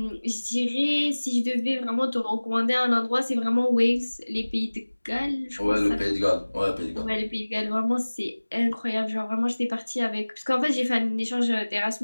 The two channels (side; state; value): both; inverted; correlation -1.00